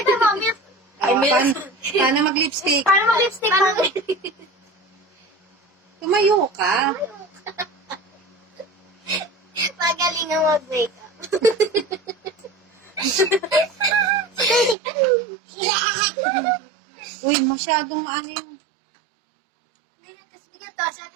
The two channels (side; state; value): left; drops out; at 14.8 s